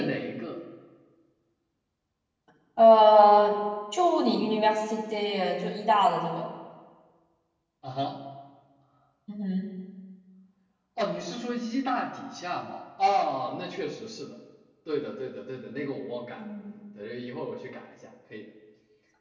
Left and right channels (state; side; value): identical; both; correlation 1.00